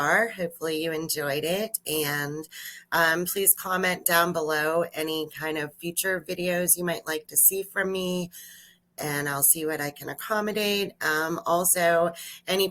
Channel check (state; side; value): normal; both; correlation 0.96